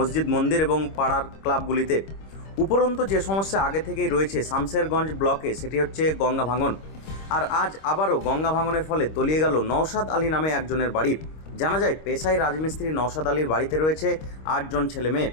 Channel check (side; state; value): right; late; 26 ms